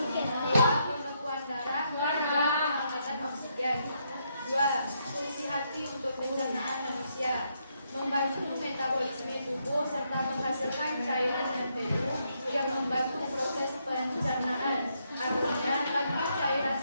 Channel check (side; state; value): both; inverted; correlation -0.77